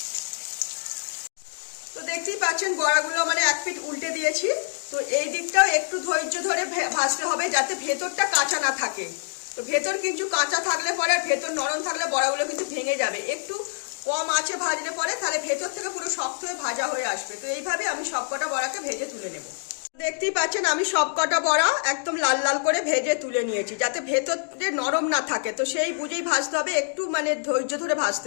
তো দেখতেই পাচ্ছেন বড়াগুলো এক পিঠ উল্টে দিয়েছি। তো এই দিকটাও একটু ধৈর্য ধরে ভাজতে হবে, যাতে ভেতরটা কাঁচা না থাকে। তো ভেতর কিন্তু কাঁচা থাকলে পরে আর ভেতর নরম থাকলে বড়াগুলো কিন্তু ভেঙে যাবে। একটু কম আঁচে ভাজলে পরে তাহলে ভেতর থেকে পুরো শক্ত হয়ে ভাজা হয়ে আসবে। তো এইভাবে আমি সবকটা বড়াকে ভেজে তুলে নেব। দেখতেই পাচ্ছেন আমি সবকটা বড়া একদম লাল লাল করে ভেজে তুলে নিয়েছি, যাতে ভেতরে নরম না থাকে। তো সেই বুঝেই ভাজতে হবে, একটু ধৈর্য ধরে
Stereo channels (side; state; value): right; silent; digital silence